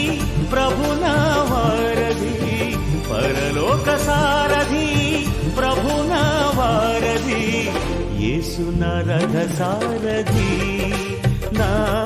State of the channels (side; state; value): both; identical; correlation 1.00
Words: ప్రభునా వారధి, పరలోక సారథి ప్రభునా వారధి, యేసు నా రథ సారథి, నా